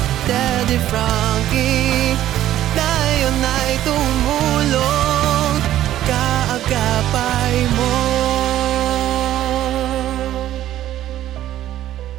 Daddy Frankie, tayo na'y tumulong, kaagapay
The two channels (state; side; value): quieter; left; 12.9 dB